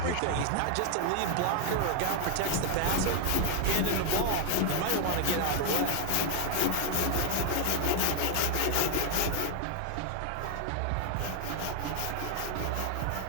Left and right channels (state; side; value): different; both; correlation 0.00